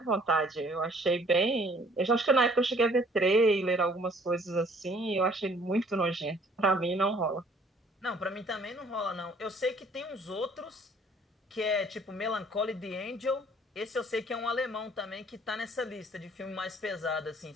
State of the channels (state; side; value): normal; both; correlation 0.58